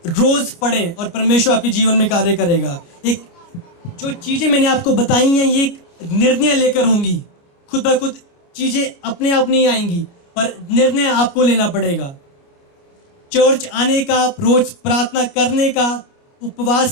रोज पढ़ें और परमेश्वर आपके जीवन में कार्य करेगा। एक जो चीजें मैंने आपको बताई हैं, ये एक निर्णय लेकर होंगी। खुद ब खुद चीजें अपने आप नहीं आएंगी, पर निर्णय आपको लेना पड़ेगा। चर्च आने का, रोज प्रार्थना करने का,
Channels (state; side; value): late; right; 29 ms